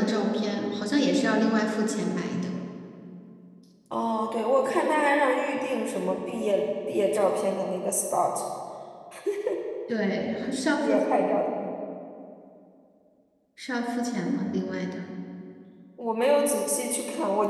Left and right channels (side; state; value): both; identical; correlation 1.00